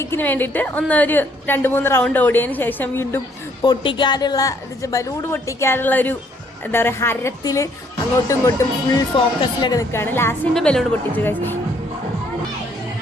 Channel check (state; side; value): normal; both; correlation 0.66